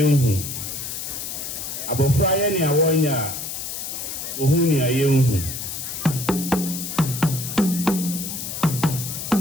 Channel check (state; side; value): noise; left; hiss, 6 dB below the sound